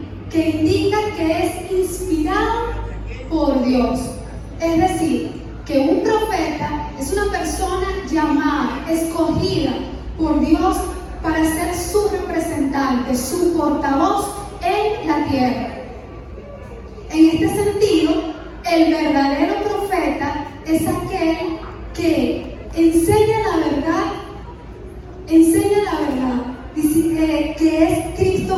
que indica que es inspirado por Dios. Es decir, que un profeta es una persona llamada, escogida por Dios para ser su representante, su portavoz en la tierra. En este sentido, el verdadero profeta es aquel que enseña la verdad, dice que es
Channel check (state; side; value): identical; both; correlation 1.00